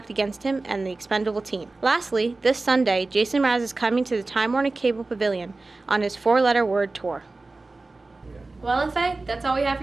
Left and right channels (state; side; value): quieter; left; 3.3 dB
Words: against him and the expendable team. Lastly, this Sunday, Jason Mraz is coming to the Time Warner Cable Pavilion on his 4-letter word tour. Well, FA, that's all we have